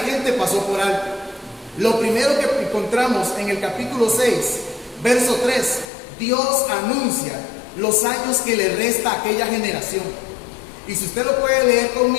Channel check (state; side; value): drops out; right; at 5.9 s